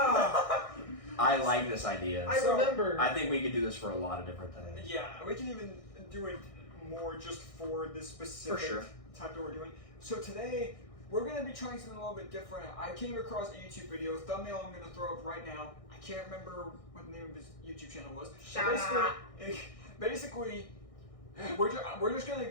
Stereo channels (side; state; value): right; late; 1.6 ms